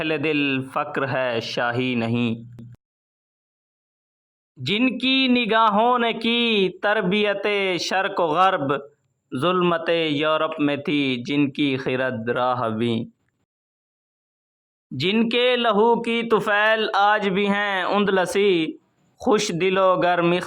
دل فقر ہے شاہی نہیں، جن کی نگاہوں نے کی تربیت شرق و غرب، ظلمت یورپ میں تھی جن کی خرد راہبی، جن کے لہو کی طفیل آج بھی ہیں اندلسی، خوش دل و گرم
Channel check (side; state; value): both; identical; correlation 1.00